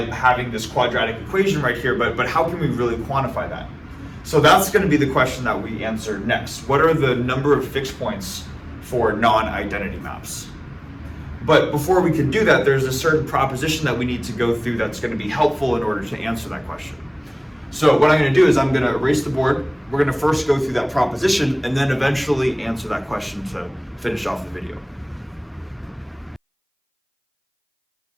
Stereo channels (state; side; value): identical; both; correlation 1.00